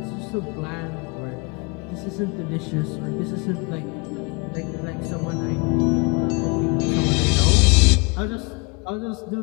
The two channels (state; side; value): quieter; right; 30.2 dB